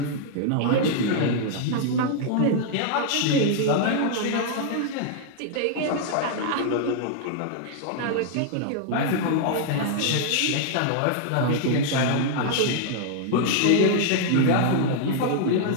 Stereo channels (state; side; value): different; both; correlation -0.01